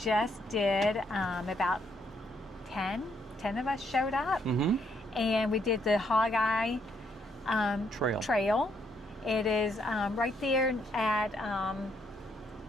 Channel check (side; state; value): both; normal; correlation 0.73